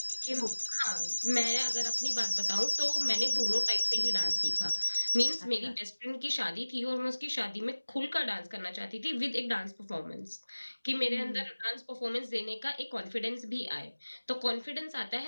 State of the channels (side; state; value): both; inverted; correlation -1.00